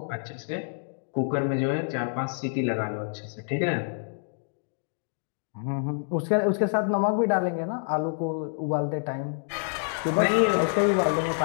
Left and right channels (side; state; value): right; silent; digital silence